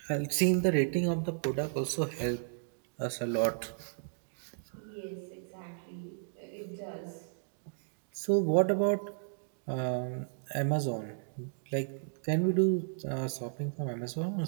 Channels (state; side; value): silent; left; digital silence